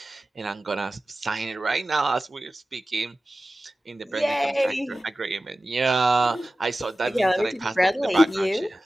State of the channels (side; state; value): both; normal; correlation 0.95